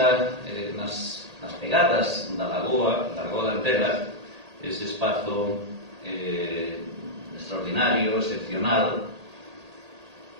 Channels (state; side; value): late; left; 1.8 ms